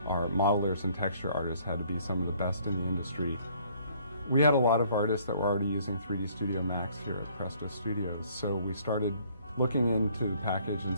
Our modelers and texture artists had to be some of the best in the industry. We had a lot of artists that were already using 3D Studio Max here at Presto Studios, so we started looking into the package and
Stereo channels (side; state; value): both; inverted; correlation -0.61